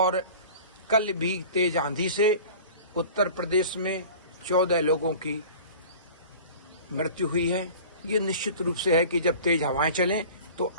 कल भी तेज आंधी से उत्तर प्रदेश में 14 लोगों की मृत्यु हुई है। ये निश्चित रूप से है कि जब तेज हवाएं चलें तो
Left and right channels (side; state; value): both; inverted; correlation -0.41